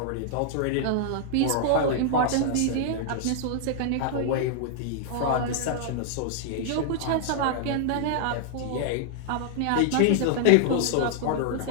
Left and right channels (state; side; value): different; both; correlation -0.01